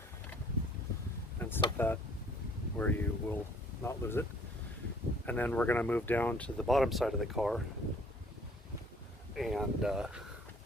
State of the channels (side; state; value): both; normal; correlation 0.57